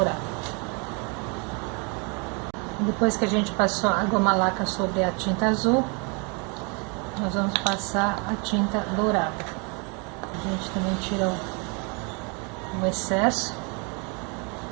Depois que a gente passou a goma laca sobre a tinta azul, nós vamos passar a tinta dourada. A gente também tira o excesso.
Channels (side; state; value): left; quieter; 33.5 dB